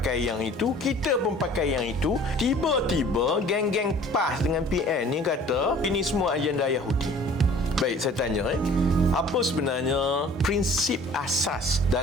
yang itu, kita pun pakai yang itu, tiba-tiba geng-geng PAS dengan PN ni kata ini semua agenda Yahudi. Baik, saya tanya apa sebenarnya prinsip asas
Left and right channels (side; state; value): both; normal; correlation 0.49